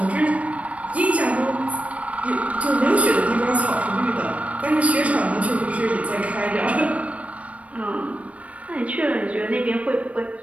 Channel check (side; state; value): left; late; 0.065 ms